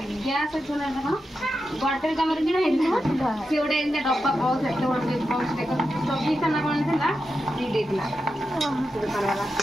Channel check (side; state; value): both; normal; correlation 0.89